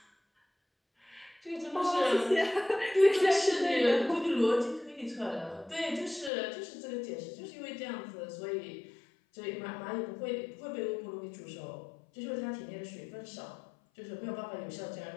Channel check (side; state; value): right; drops out; at 6.3 s